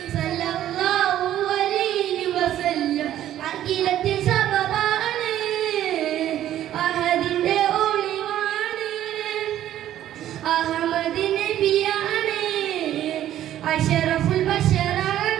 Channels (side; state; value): left; quieter; 12.2 dB